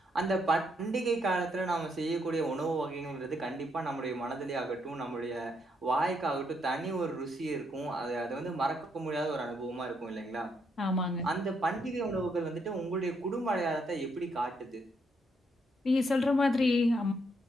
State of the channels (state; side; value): normal; both; correlation 0.75